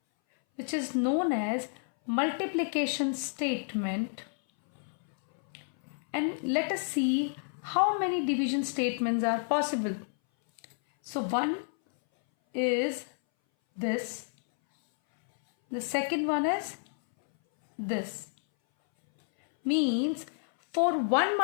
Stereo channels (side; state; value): right; silent; 58 dB below the other